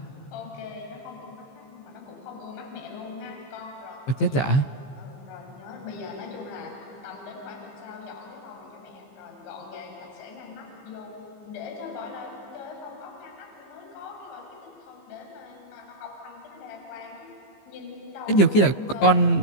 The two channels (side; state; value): right; late; 15 ms